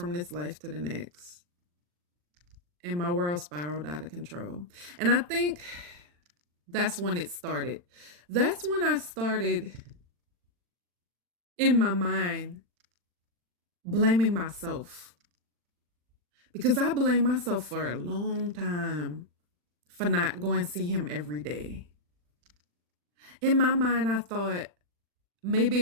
this life to the next. And my world spiraled out of control. And I think that's when it started. That's when I started in my mind blaming myself. Because I blamed myself for a long time for not going to see him every day. In my mind, I thought maybe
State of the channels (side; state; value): left; late; 40 ms